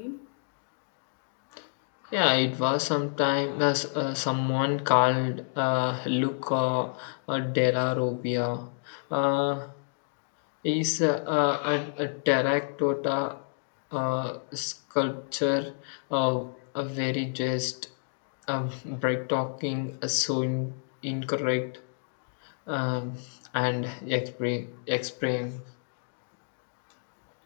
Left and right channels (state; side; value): silent; right; digital silence